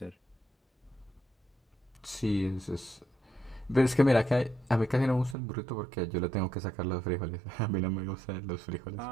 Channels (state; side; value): drops out; left; at 5.4 s